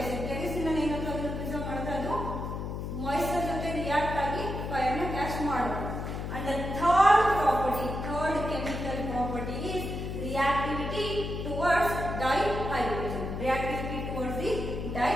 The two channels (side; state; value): left; noise; hum, 5 dB below the sound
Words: Kerosene preserve moisture jote react agi fire na catch ಮಾಡುತ್ತೆ. And the third chemical property is reactivity towards dihydrogen. Reactivity towards the